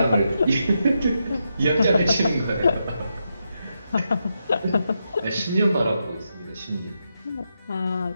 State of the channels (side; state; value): both; inverted; correlation -0.84